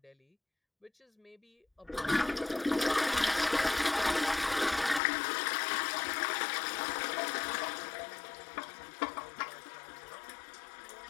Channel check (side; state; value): right; drops out; at 5.0 s